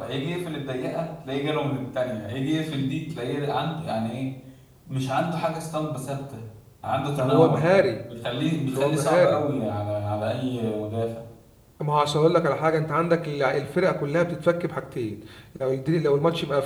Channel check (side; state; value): both; identical; correlation 1.00